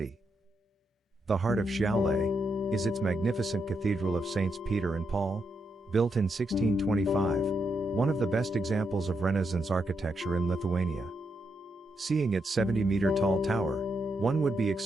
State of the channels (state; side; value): normal; both; correlation 0.81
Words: The heart of Šiauliai is its magnificent Cathedral of Saints Peter and Paul, built in 1625, one of the best examples of Renaissance architecture in Lithuania. Seeing its 70-meter tall tower, one would be